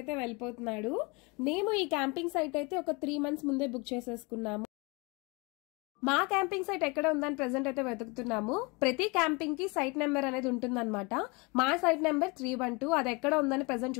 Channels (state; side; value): quieter; right; 28.3 dB